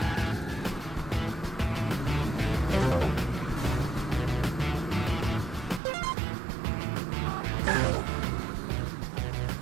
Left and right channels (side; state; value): left; drops out; at 5.8 s